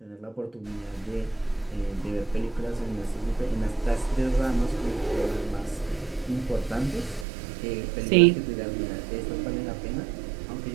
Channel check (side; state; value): left; drops out; at 7.2 s